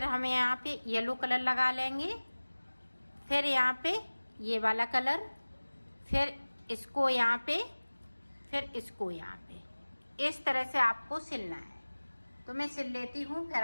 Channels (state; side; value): inverted; both; correlation -1.00